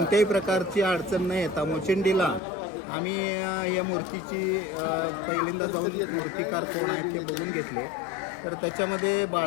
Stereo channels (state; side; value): drops out; right; at 2.4 s